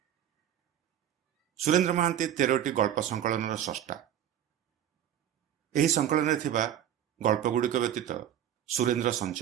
सुरेंद्र महांती 13टी गल्प संकलन स्रष्टा। यही संकलन थिबा गल्पगुड़िक व्यतीत सुरेंद्र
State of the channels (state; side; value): quieter; left; 10.5 dB